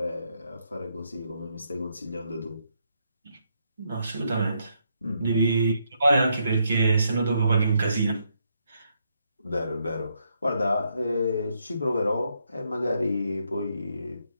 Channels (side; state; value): both; inverted; correlation -0.77